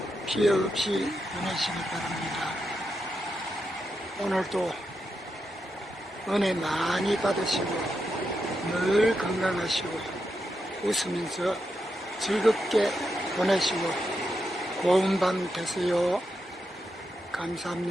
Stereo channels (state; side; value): normal; both; correlation 0.85